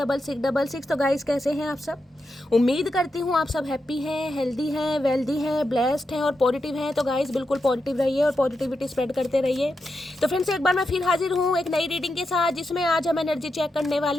तो guys कैसे हैं आप सब? उम्मीद करती हूँ आप सब हैप्पी हैं, हेल्दी हैं, वेल्दी हैं, ब्लेस्ड हैं और पॉजिटिव हैं। तो गाइस बिल्कुल पॉजिटिव रहिए और पॉजिटिविटी स्प्रेड करते रहिए। तो फ्रेंड्स एक बार मैं फिर हाजिर हूँ एक नई रीडिंग के साथ, जिसमें आज हम एनर्जी चेक करने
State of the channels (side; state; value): both; normal; correlation 0.87